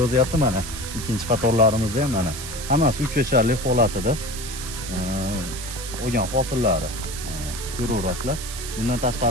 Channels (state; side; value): noise; right; hiss, 9 dB below the sound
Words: yozyapti mana. Ikkinchi qatorlarimizda ham mana. Hammasi 3 yasharlik holatida olgan hosillari ko'raverasizlar. Bundan